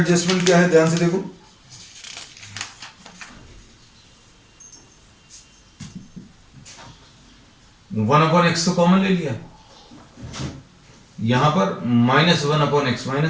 क्या है ध्यान से देखो, वन अपॉन एक्स तो कॉमन ले लिया, यहां पर minus one upon x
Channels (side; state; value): both; identical; correlation 1.00